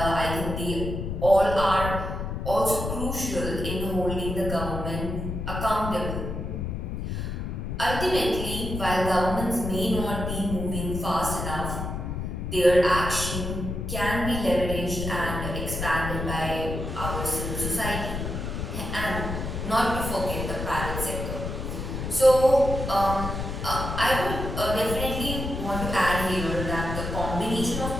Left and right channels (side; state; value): left; noise; rumble, 4 dB below the sound